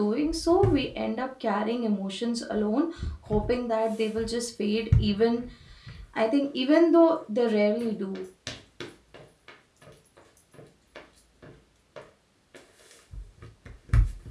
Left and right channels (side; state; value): both; identical; correlation 1.00